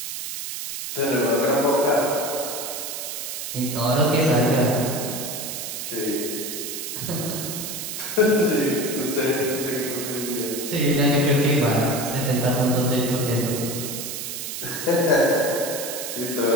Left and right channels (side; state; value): right; noise; hiss, 6 dB below the sound